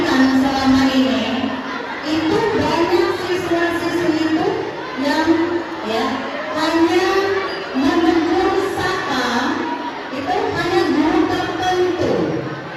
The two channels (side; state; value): both; identical; correlation 1.00